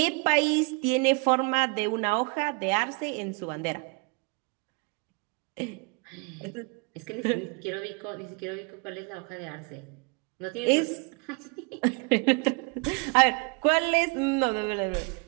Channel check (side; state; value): left; quieter; 32.6 dB